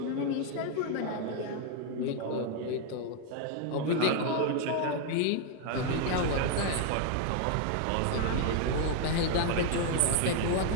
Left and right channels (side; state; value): both; different; correlation 0.00